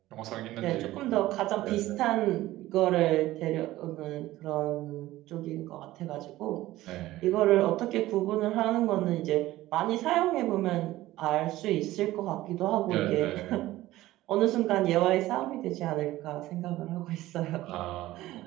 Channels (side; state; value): left; quieter; 16.3 dB